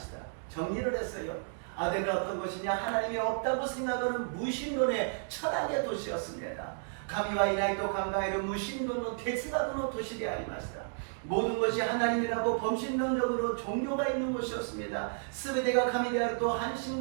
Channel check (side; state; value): left; silent; digital silence